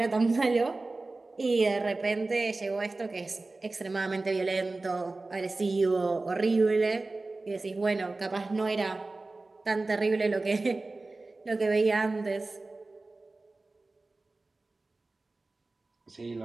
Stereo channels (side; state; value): left; quieter; 3.3 dB